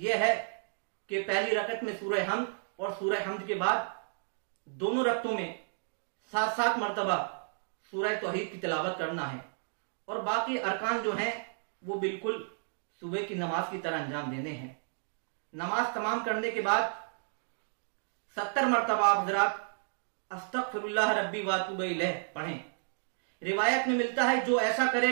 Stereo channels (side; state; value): left; silent; digital silence